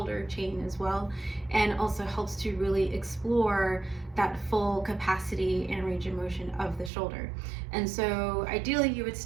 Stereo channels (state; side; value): drops out; left; at 6.9 s